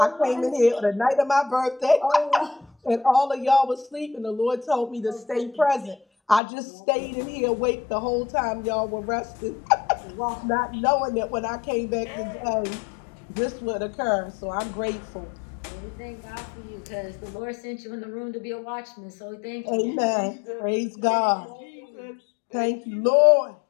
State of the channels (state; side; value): drops out; right; at 6.4 s